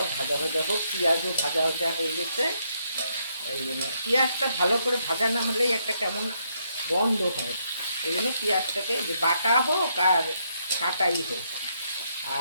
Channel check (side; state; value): both; inverted; correlation -0.75